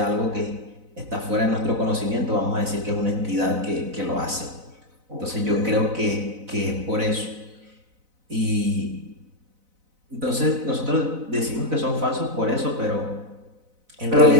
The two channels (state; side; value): late; left; 4.0 ms